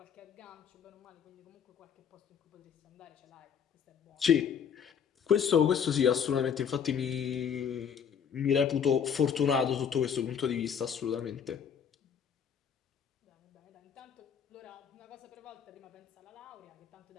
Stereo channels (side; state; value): right; quieter; 7.5 dB